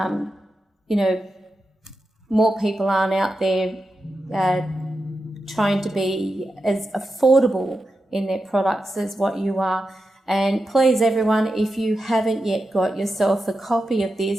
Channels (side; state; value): both; normal; correlation 0.90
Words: more people aren't out there trying to be as affordable in their products as what you are. And please, everyone, if you haven't yet got yourself a copy of